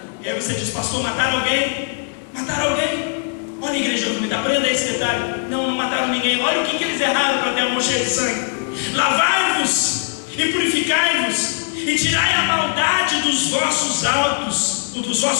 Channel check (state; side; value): silent; right; digital silence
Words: E aí você diz, pastor, mataram alguém? Mataram alguém? Olha a igreja do Comitê, aprenda esse detalhe. Não mataram ninguém. Olha o que eles erraram para ter a mão cheia de sangue. Lavai-vos e purificai-vos e tirai a maldade dos vossos atos